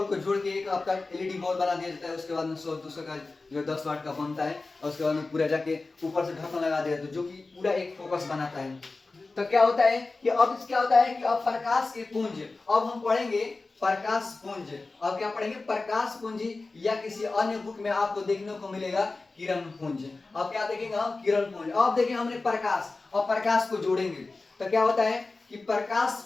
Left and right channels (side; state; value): right; quieter; 3.6 dB